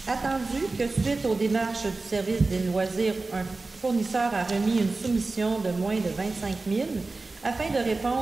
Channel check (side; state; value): left; quieter; 3.5 dB